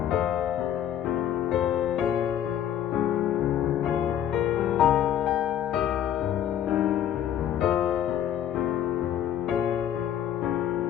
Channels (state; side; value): quieter; right; 10.4 dB